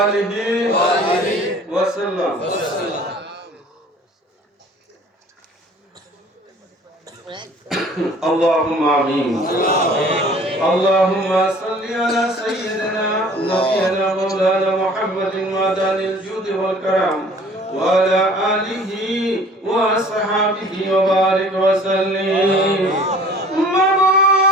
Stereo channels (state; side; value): normal; both; correlation 0.50